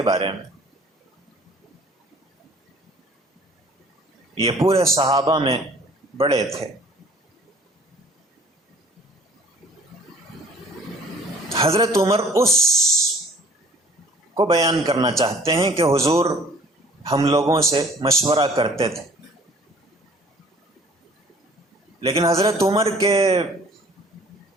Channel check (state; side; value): normal; both; correlation 0.53